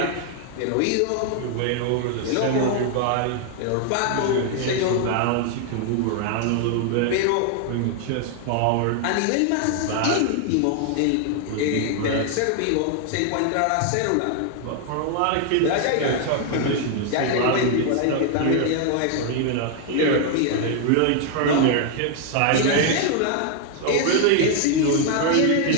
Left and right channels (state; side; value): different; both; correlation 0.00